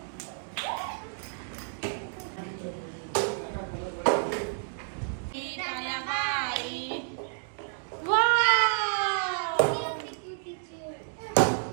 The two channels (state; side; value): silent; left; digital silence